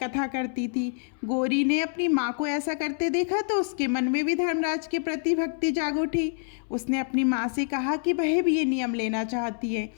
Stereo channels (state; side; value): silent; right; 60 dB below the other